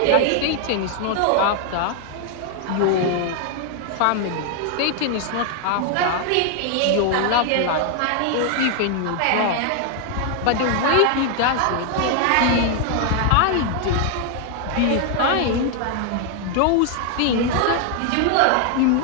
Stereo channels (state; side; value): different; both; correlation 0.00